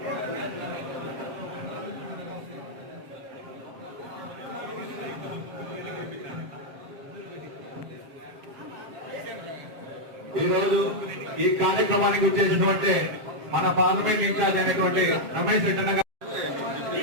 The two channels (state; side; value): late; left; 7.4 ms